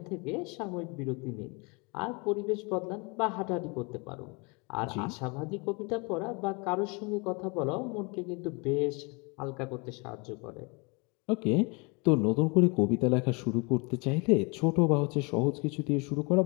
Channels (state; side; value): quieter; right; 30.3 dB